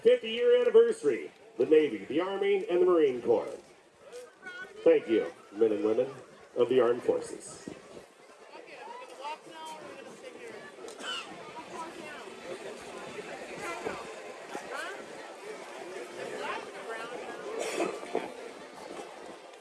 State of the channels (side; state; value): both; identical; correlation 1.00